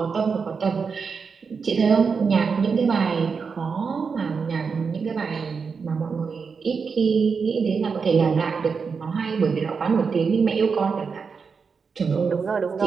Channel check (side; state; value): left; quieter; 5.4 dB